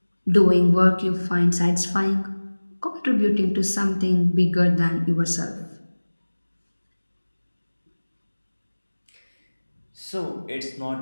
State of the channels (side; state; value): both; inverted; correlation -1.00